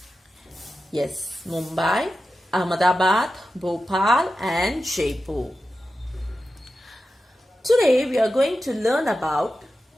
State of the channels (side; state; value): both; normal; correlation 0.92